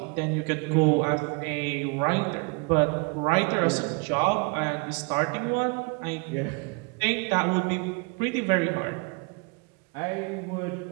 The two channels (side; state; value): left; quieter; 31.4 dB